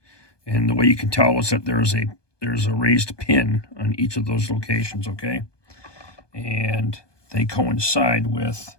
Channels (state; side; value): late; right; 1.2 ms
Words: And the way you can tell is that there's a raised pin on each of those locations, okay? And they coincide with